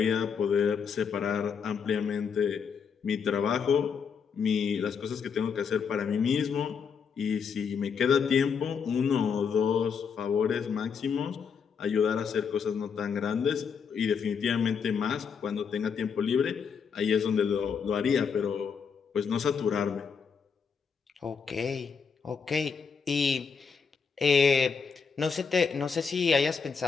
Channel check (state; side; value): quieter; right; 6.2 dB